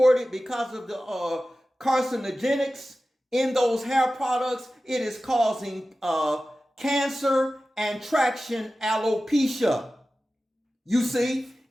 because of the carcinogenics in those hair products. It is causing cancer and traction alopecia. You see,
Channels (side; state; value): both; normal; correlation 0.95